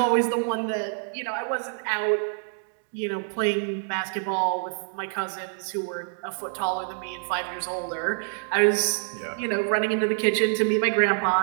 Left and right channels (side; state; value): left; silent; digital silence